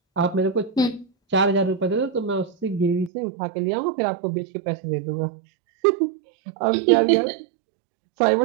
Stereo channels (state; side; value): drops out; left; at 3.1 s